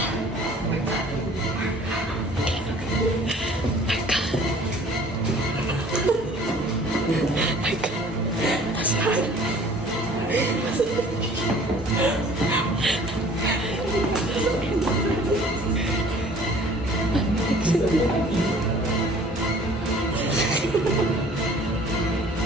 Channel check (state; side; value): normal; both; correlation 0.51